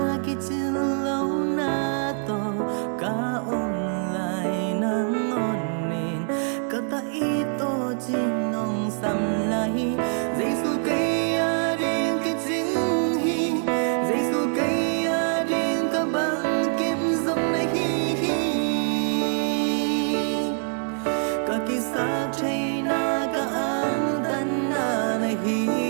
kỳ chân lâu na to cả ông lại nắng ngon nên cả ta ít to trên nông sầm lại Giêsu cây điên cái chính hi Giêsu cây điên cả bằng kim giống này hi cả kỳ sắc chạy na cả ang tan na này hi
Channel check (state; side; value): silent; left; 59 dB below the other